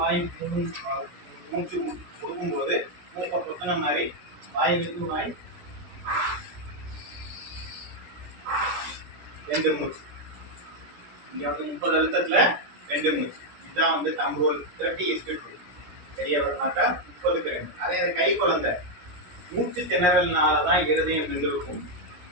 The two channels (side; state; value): left; late; 17 ms